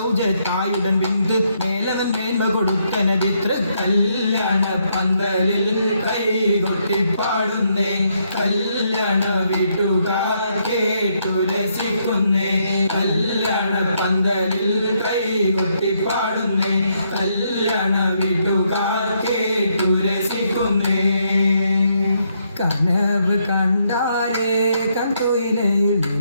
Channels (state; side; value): inverted; both; correlation -0.75